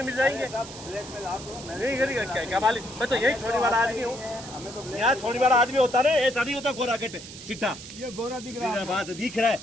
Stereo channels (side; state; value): right; noise; hiss, 14 dB below the sound